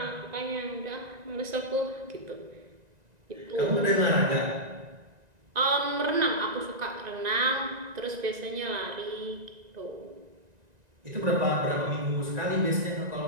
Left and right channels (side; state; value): left; late; 1.9 ms